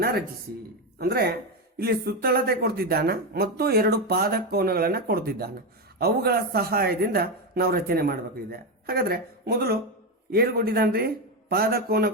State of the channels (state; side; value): normal; both; correlation 0.11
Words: ರಚಿಸಿ. ಅಂದ್ರೆ ಇಲ್ಲಿ ಸುತ್ತಳತೆ ಕೊಡ್ತಿದ್ದಾನ ಮತ್ತು 2 ಪಾದ ಕೋನಗಳನ್ನು ಕೊಡ್ತಿದ್ದಾನ. ಅವುಗಳ ಸಹಾಯದಿಂದ ನಾವು ರಚನೆ ಮಾಡಬೇಕಿದೆ. ಹಾಗಾದ್ರೆ ಮೊದಲು ಏನು ಕೊಟ್ಟಿದ್ದಾನ್ರಿ? ಪಾದ ಕೋನ